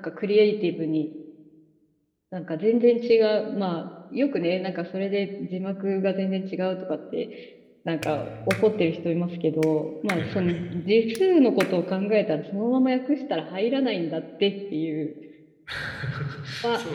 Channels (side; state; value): both; identical; correlation 1.00